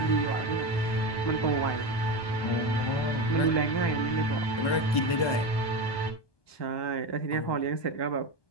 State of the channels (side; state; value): right; late; 1.2 ms